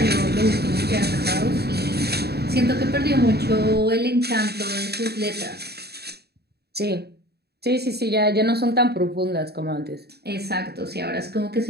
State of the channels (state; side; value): late; left; 0.47 ms